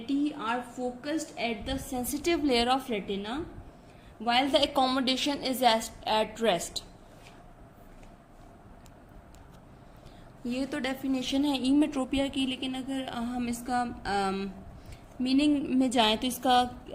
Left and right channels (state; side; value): identical; both; correlation 1.00